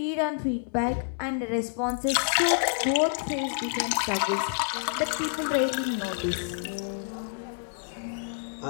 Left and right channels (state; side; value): silent; right; digital silence